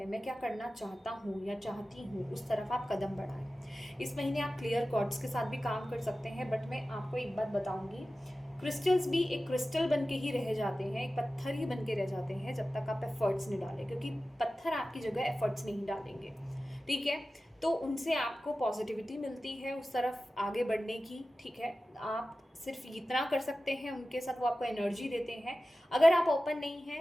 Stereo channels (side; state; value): both; normal; correlation 0.95